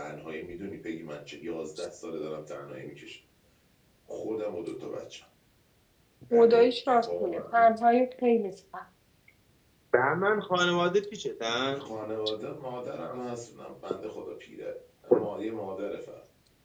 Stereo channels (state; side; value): identical; both; correlation 1.00